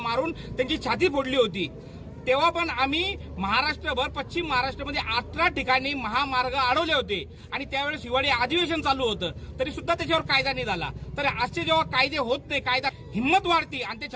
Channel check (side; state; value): both; identical; correlation 1.00